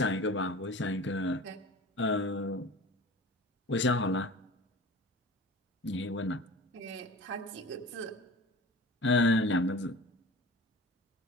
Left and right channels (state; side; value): normal; both; correlation 0.38